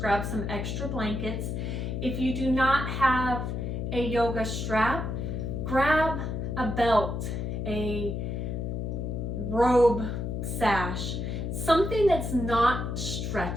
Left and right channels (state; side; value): noise; left; hum, 3 dB below the sound